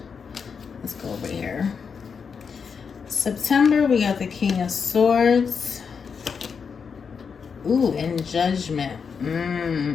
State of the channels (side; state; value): right; quieter; 6.1 dB